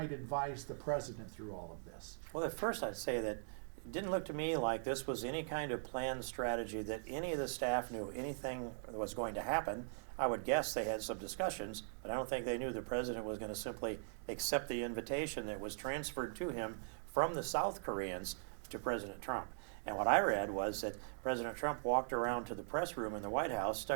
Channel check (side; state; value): left; silent; digital silence